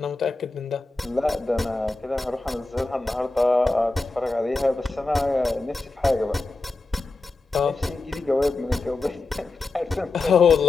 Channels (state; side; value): quieter; right; 3.3 dB